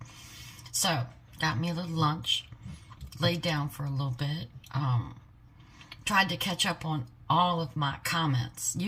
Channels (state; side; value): identical; both; correlation 1.00